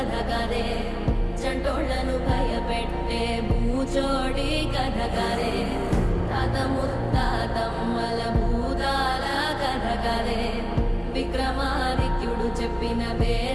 కదే చంటోళ్లను భయపెట్టే భూచోడి కథ కదే తాత ముత్తాతమ్మల భూతాల కథ కదే విక్రమాదిత్యుడు చెప్పిన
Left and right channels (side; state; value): both; identical; correlation 1.00